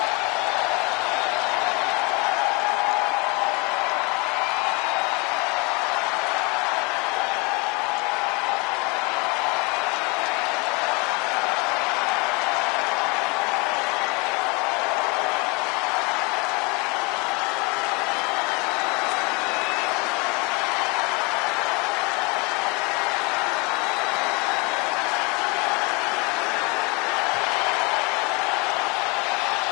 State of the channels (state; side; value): quieter; right; 28.4 dB